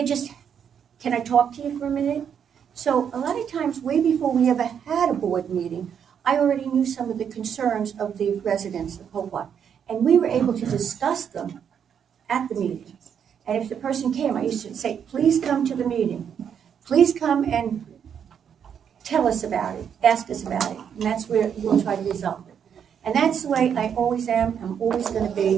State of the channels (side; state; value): left; quieter; 8.0 dB